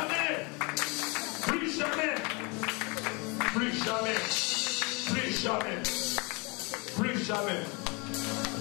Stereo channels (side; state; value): right; quieter; 29.7 dB